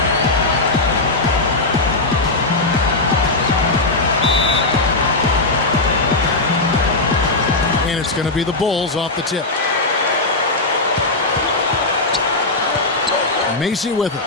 And it's going to be the Bulls off the tip. Macy with it.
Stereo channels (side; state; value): right; quieter; 3.1 dB